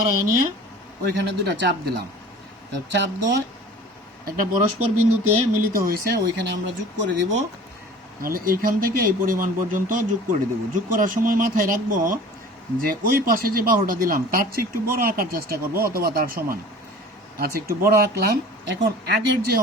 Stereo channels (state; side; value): normal; both; correlation 0.43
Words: নিয়ে ওইখানে দুটা চাপ দিলাম। চাপ দিয়ে একটা পরস্পর বিন্দুতে মিলিত হয়েছে, ওইখানে আমরা যোগ করে দিব। তাহলে এইখান থেকে এই পরিমাণ পর্যন্ত যোগ করে দেব। যোগ করার সময় মাথায় রাখবো যে ওই পাশে যে বাহুটা দিলাম তার চেয়ে একটু বড় আঁকার চেষ্টা করব, অথবা তার সমান। আচ্ছা, একটু বড় আঁকলাম। এখন আগের যে